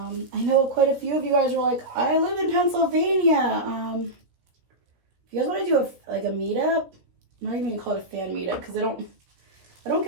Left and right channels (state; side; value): late; left; 16 ms